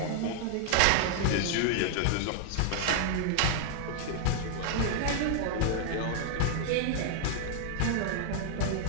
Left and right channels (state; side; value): different; both; correlation -0.01